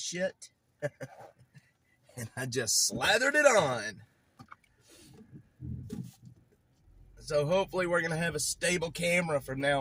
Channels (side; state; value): both; identical; correlation 1.00